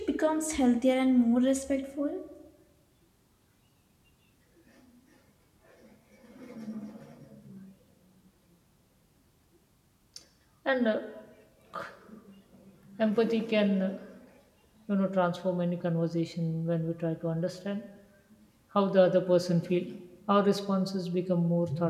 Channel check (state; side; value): identical; both; correlation 1.00